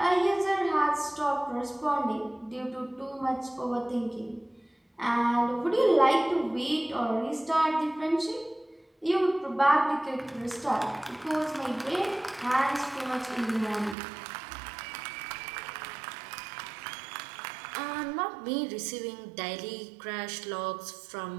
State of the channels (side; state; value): left; drops out; at 14.0 s